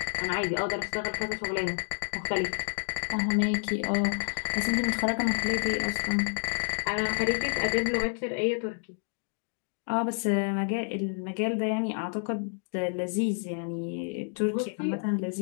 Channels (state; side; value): silent; right; digital silence